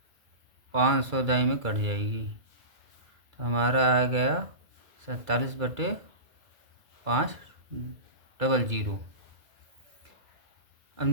500 दाई में कट जाएगी। तो हमारा आ गया 47/500। अब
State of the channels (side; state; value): left; late; 2.3 ms